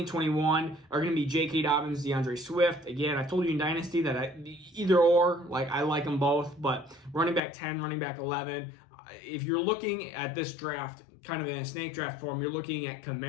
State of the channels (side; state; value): right; drops out; at 7.4 s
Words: 21 are going to be J.K. Dobbins, DeAndre Swift. Again, I told you in Dynasty that either or, like I like them both, but running back 10, running back 11. If you're looking at this draft kind of in a snake draft form, you're looking at